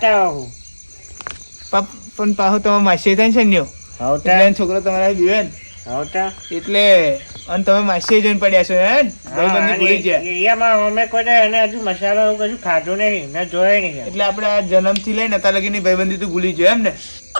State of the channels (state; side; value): inverted; both; correlation -1.00